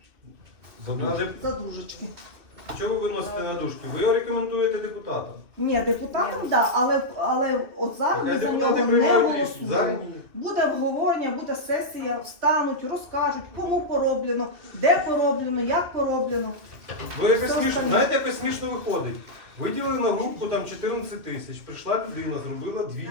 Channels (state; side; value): late; left; 2.6 ms